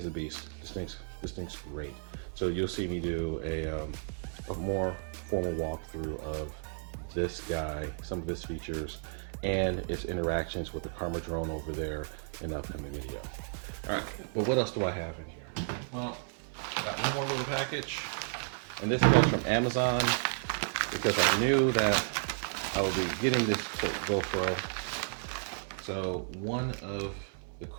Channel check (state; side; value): silent; left; 56 dB below the other